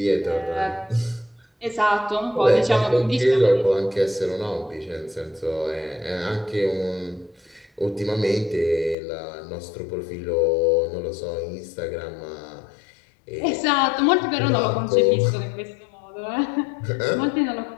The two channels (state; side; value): drops out; right; at 9.0 s